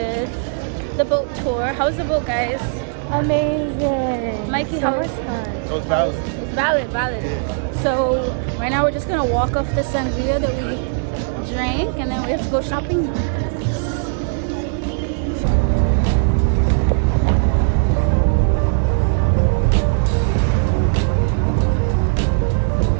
The boat tour. How was the boat, guys? Amazing. Mikey, how was it? Was valid. It's valid. Yeah. So right now we're just gonna walk off the sangria that we drank, and then we have to go shopping.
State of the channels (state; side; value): silent; left; 60 dB below the other